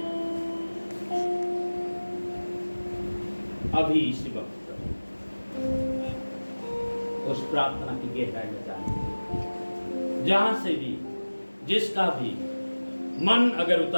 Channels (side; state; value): both; inverted; correlation -1.00